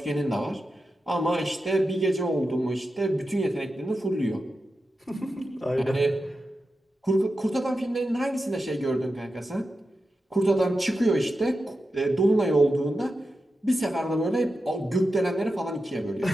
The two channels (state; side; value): normal; both; correlation 0.90